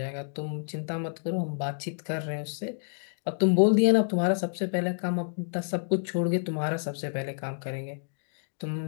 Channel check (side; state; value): right; silent; digital silence